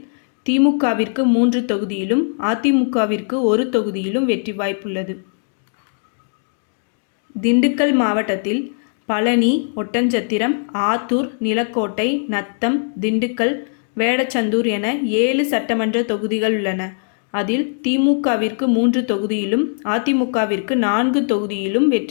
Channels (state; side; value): silent; right; digital silence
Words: திமுகவிற்கு 3 தொகுதியிலும், அதிமுகவிற்கு 1 தொகுதியிலும் வெற்றி வாய்ப்புள்ளது. திண்டுக்கல் மாவட்டத்தில் பழனி, ஒட்டன்சத்திரம், ஆத்தூர், நிலக்கோட்டை, நத்தம், திண்டுக்கல், வேடச்சந்தூர் என 7 சட்டமன்ற தொகுதிகள் உள்ளன. அதில் திமுகவிற்கு 3 தொகுதியிலும், அதிமுகவிற்கு 4 தொகுதியிலும்